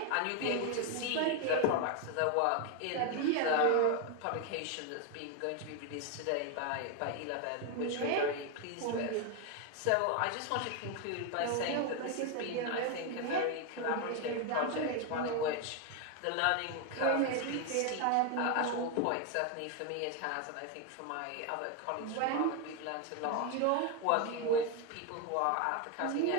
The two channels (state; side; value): different; both; correlation 0.01